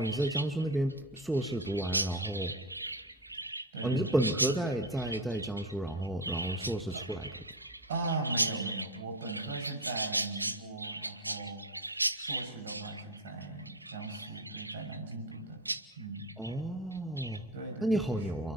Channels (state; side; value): normal; both; correlation 0.17